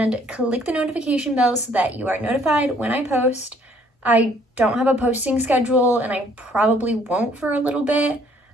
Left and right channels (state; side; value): normal; both; correlation 0.61